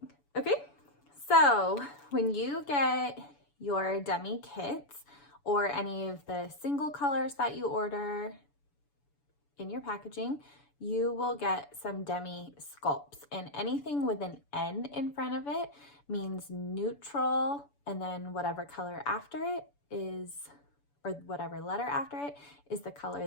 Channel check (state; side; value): late; right; 7.0 ms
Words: Okay, so when you get your Demi kits or any of the single colors that you order in your packaging, you will get some Demi sculpts, and anything with an N in front of it means neutral, and then whatever color after it is, or whatever letter after it is the